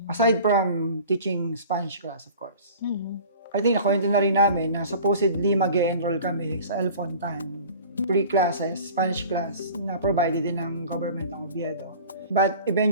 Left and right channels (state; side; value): inverted; both; correlation -0.43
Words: Aside from teaching Spanish class, of course. Mhm. I think nakwento na rin namin na supposedly mag-enroll kami sa El Fontan. Free classes, Spanish class, na provided din ng government ng Oviedo. But